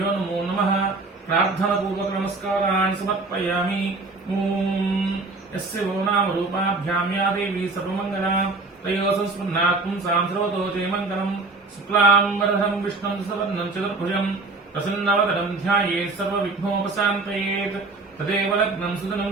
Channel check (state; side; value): quieter; left; 3.5 dB